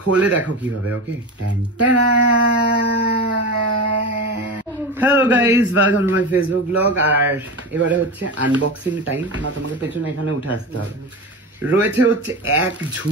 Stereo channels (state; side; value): normal; both; correlation 0.25